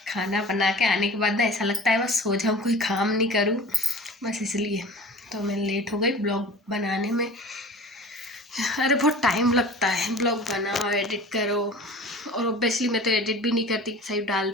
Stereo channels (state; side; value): normal; both; correlation 0.40